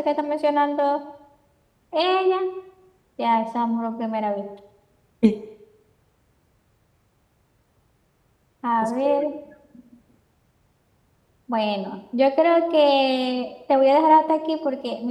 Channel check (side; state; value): both; identical; correlation 1.00